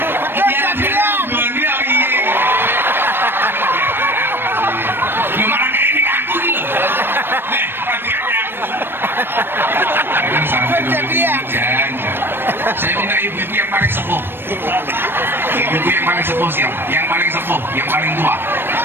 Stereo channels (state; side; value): late; left; 0.10 ms